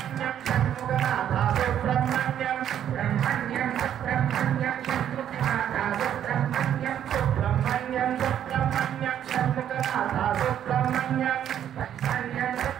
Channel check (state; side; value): quieter; left; 10.1 dB